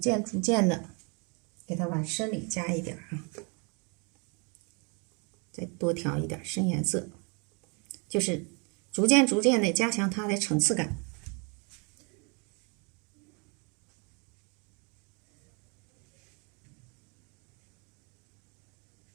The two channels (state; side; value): quieter; left; 33.5 dB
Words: 的给它往深里加一点啊，再多调一点深颜色，就是逐渐的加强它的层次感。